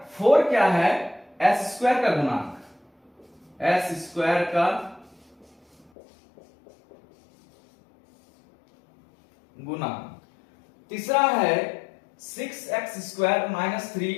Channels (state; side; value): drops out; right; at 5.9 s